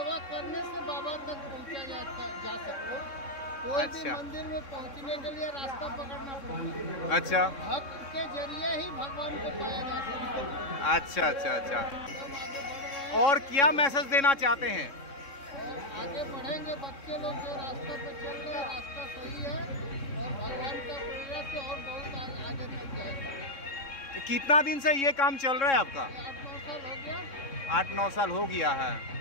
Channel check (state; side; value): late; right; 3.7 ms